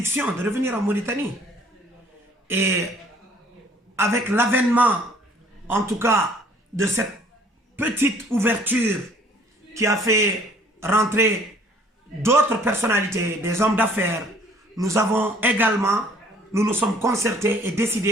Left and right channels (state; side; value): normal; both; correlation 0.57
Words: de revenir en Mauritanie. Et avec l'avènement, en tout cas, de cette petite ouverture qui a fait rentrer d'autres personnalités, des hommes d'affaires, nous avons également, nous nous sommes concertés et